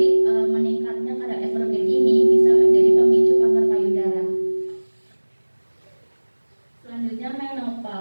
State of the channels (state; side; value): inverted; both; correlation -1.00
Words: meningkatnya kadar estrogen ini bisa menjadi pemicu kanker payudara. Selanjutnya